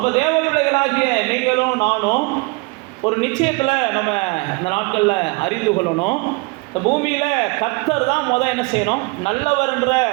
தேவ பிள்ளைகளாகிய நீங்களும் நானும் ஒரு நிச்சயத்தில் நம்ம இந்த நாட்களில் அறிந்து கொள்ளணும். இந்த பூமியில் கர்த்தர் தான் என்ன செய்யணும்? நல்லவர்ன்ற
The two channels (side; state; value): left; quieter; 27.8 dB